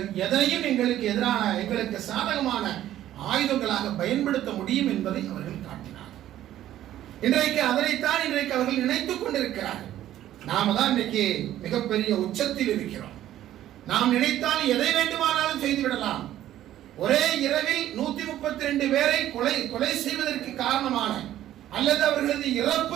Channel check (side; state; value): left; quieter; 12.7 dB